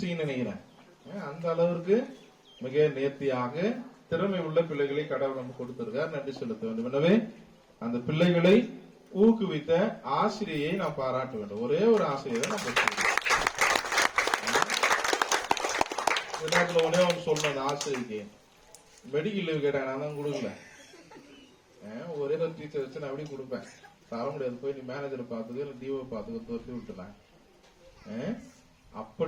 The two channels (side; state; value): both; identical; correlation 1.00